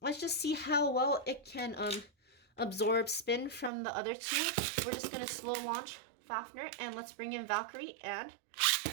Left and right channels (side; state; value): left; drops out; at 3.7 s